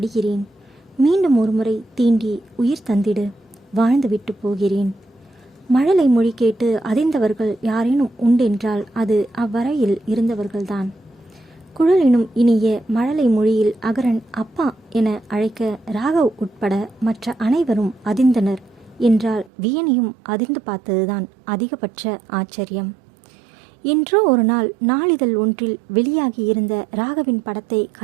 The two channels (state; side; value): drops out; left; at 19.5 s